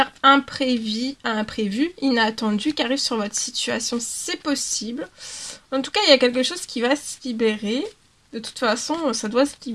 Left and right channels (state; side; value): identical; both; correlation 1.00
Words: imprévue, inattendue qui arrive sur votre situation. C'est possible. En tout cas, il y a quelque chose qui va se libérer. De toute façon, ça doit se